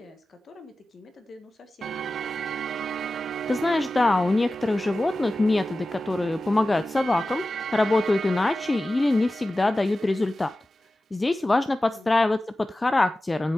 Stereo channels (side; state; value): both; normal; correlation 0.95